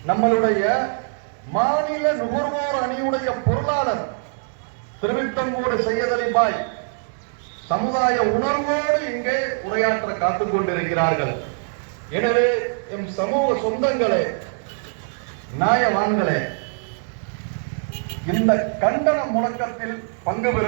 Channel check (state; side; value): silent; left; digital silence